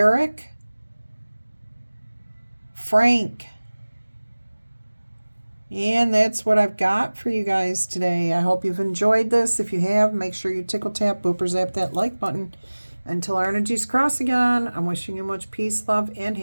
Frank. And that's what I've got for you guys today. I hope you've enjoyed this. If you have, make sure you tickle tap, booper zap that like button. Until our energies cross again, I'm wishing you much peace, love, and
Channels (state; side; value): inverted; both; correlation -1.00